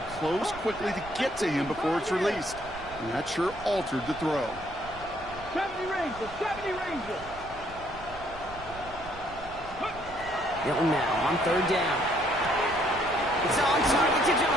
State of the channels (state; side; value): noise; right; rumble, 17 dB below the sound